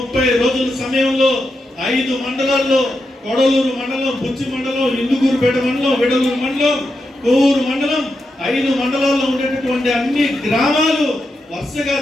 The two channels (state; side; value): normal; both; correlation 0.86